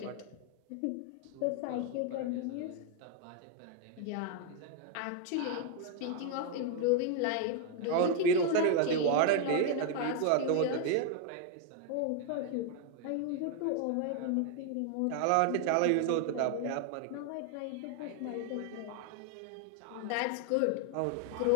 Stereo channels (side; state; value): both; different; correlation 0.01